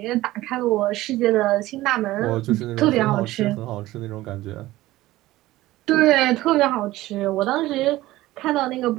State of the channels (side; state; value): left; quieter; 16.9 dB